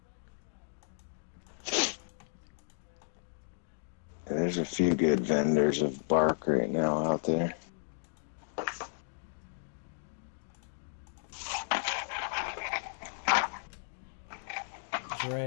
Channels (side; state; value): right; silent; digital silence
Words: There's a few good vendors of bark right now out there.